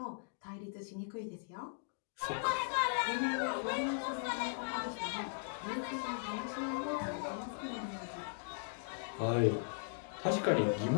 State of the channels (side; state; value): right; silent; digital silence